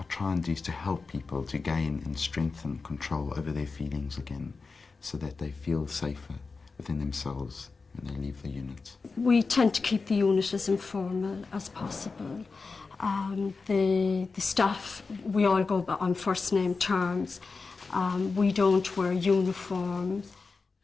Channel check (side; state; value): right; quieter; 4.3 dB